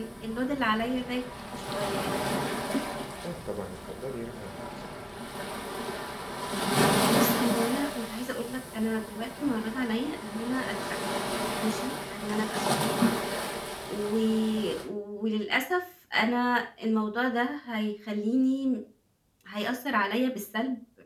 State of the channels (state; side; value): identical; both; correlation 1.00